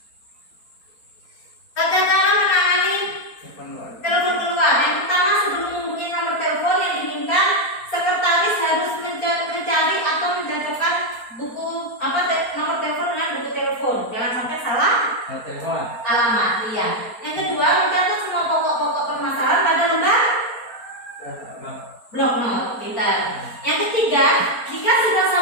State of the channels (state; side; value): late; right; 4.3 ms